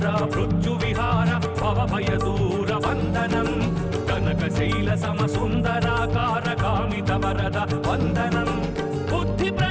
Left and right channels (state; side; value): identical; both; correlation 1.00